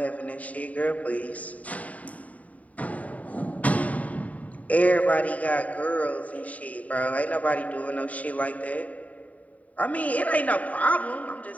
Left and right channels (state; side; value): late; right; 0.070 ms